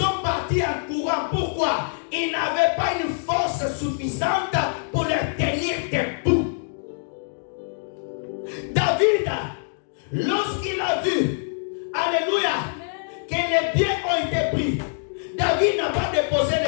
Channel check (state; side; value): silent; right; digital silence